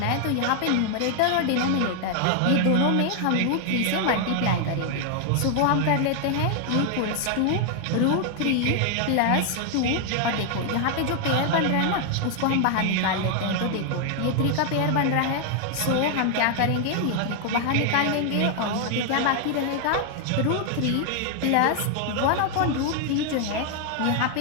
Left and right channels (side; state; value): both; different; correlation 0.00